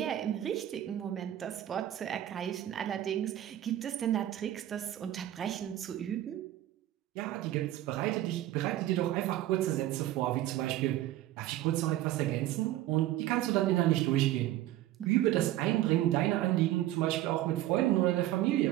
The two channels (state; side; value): quieter; left; 13.9 dB